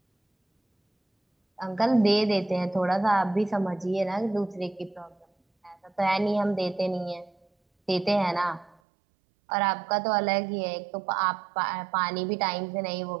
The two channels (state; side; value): drops out; left; at 8.8 s